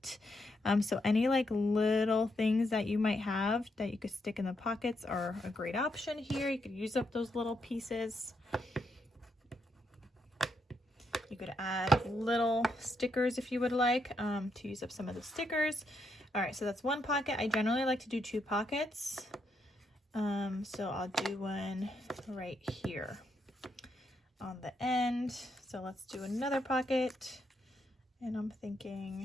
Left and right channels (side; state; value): both; normal; correlation 0.79